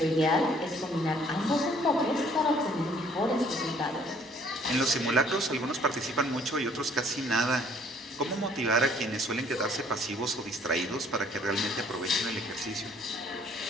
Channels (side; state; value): both; normal; correlation 0.59